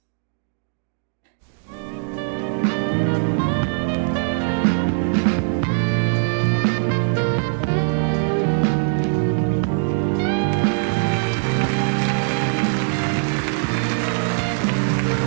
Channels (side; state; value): left; silent; 65 dB below the other